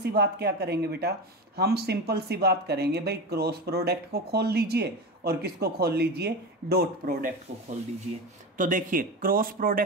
बात क्या करेंगे बेटा? हम सिंपल सी बात करेंगे भाई, क्रॉस प्रोडक्ट को खोल लीजिए और किसको खोल लीजिए? डॉट प्रोडक्ट को खोल दीजिए। तो देखिए क्रॉस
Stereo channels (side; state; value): both; normal; correlation 0.23